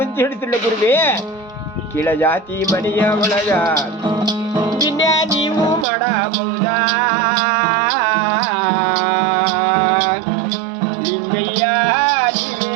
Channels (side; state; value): left; drops out; at 5.9 s